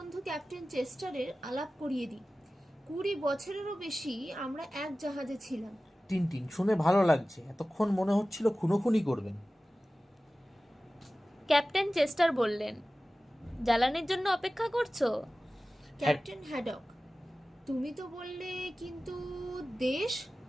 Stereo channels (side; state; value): both; normal; correlation 0.96